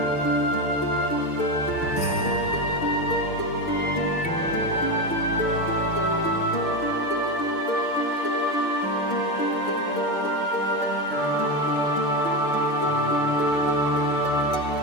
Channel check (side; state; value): right; late; 6.7 ms